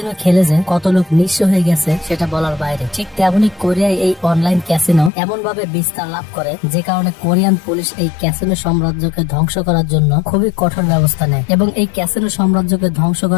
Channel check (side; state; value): right; drops out; at 5.1 s